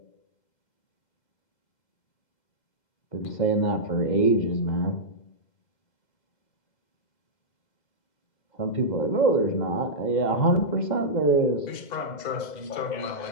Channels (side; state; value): right; late; 2.0 ms